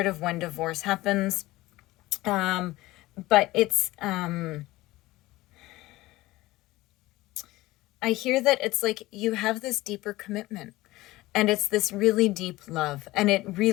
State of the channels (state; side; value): quieter; right; 18.5 dB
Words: of when divorce happens. But it's, I hear that it's you have this deeper commitment, and it's this really deep love, and it